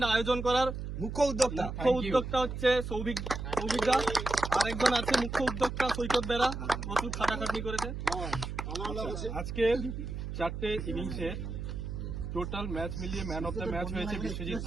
আয়োজন করার মুখ্য উদ্যোক্তা হচ্ছে সৌভিক দাস। আরেকজন আছে মুখ্য উদ্যোক্তা সৈকত বেরা, প্রচুর খাটাখাটনি করেছে। আজকে 4টে ইনিংসের টোটাল ম্যাচ মিলিয়ে ম্যান অফ দ্য ম্যাচ হয়েছে বিশ্বজিৎ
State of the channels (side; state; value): right; noise; hum, 6 dB below the sound